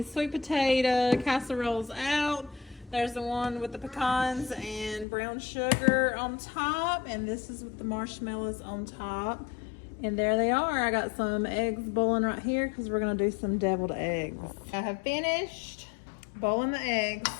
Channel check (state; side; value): drops out; right; at 5.1 s